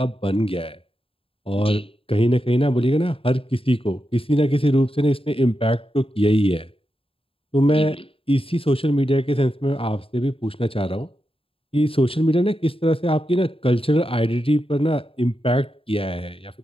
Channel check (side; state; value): right; late; 0.27 ms